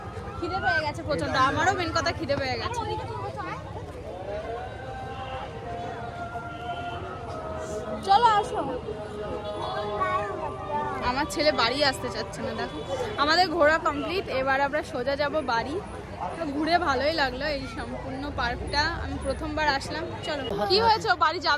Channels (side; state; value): both; identical; correlation 1.00